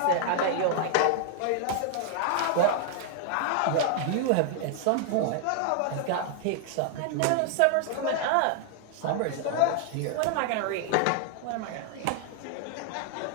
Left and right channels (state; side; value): different; both; correlation 0.00